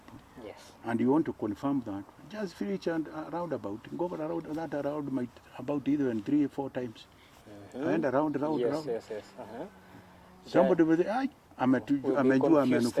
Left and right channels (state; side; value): identical; both; correlation 1.00